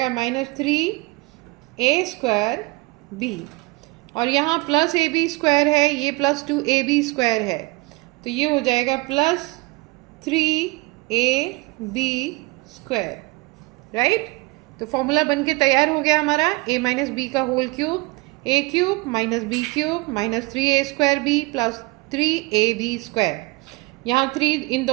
माइनस 3a स्क्वायर b, और यहाँ प्लस ए बी स्क्वायर है, ये प्लस 2ab स्क्वायर है, तो ये हो जाएगा प्लस 3ab स्क्वायर, राइट। तो फॉर्मूला बन के तैयार हो गया हमारा, a माइनस बी का whole cube, a cube minus b cube minus 3a square b plus 3ab square. यहाँ 3 इन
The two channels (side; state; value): left; quieter; 24.8 dB